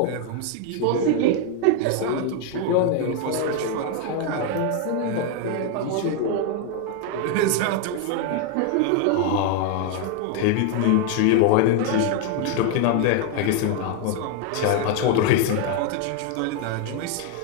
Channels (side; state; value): both; different; correlation 0.01